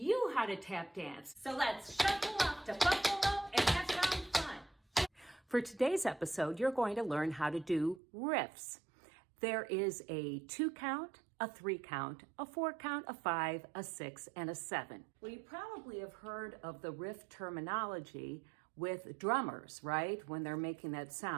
how to tap dance. So let's shuffle up to Buffalo and have some fun. For today's episode, you're going to learn how to do riffs. There is a 2 count, a 3 count, a 4 count, a 5, a 6, and a 7. Well, you probably have heard of the riff terminology with drummers, right? When they're making that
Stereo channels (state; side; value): drops out; left; at 8.0 s